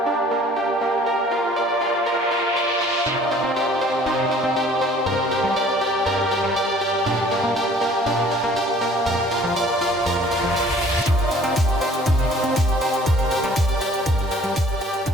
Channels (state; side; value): normal; both; correlation 0.54